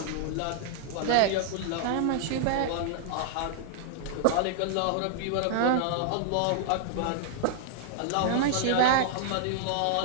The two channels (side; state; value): both; different; correlation 0.00